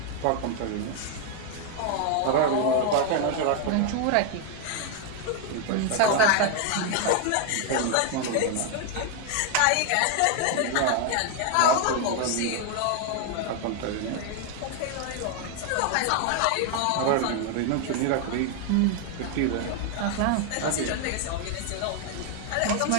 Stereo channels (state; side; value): different; both; correlation 0.00